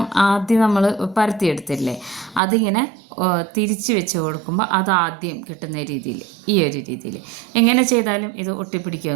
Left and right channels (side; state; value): left; drops out; at 2.4 s